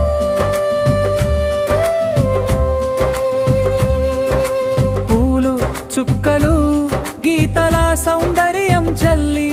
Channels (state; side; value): identical; both; correlation 1.00